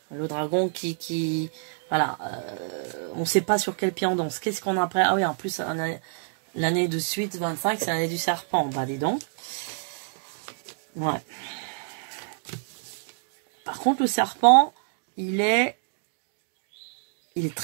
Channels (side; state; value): left; silent; digital silence